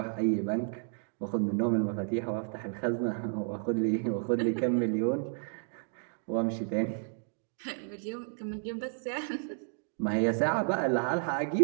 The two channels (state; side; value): silent; left; 57 dB below the other